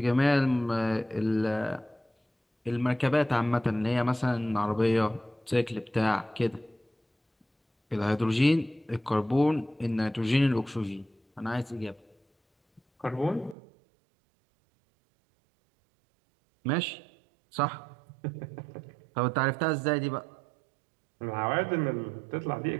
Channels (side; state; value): left; drops out; at 13.6 s